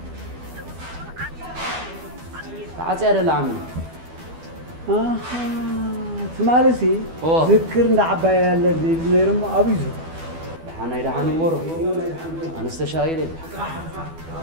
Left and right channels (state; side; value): late; left; 12 ms